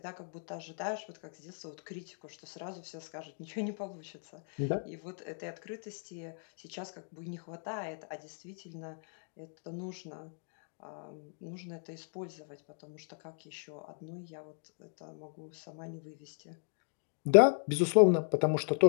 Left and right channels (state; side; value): silent; right; 54 dB below the other